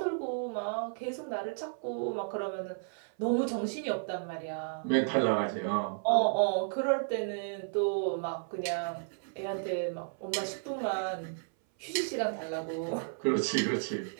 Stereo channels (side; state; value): left; silent; 56 dB below the other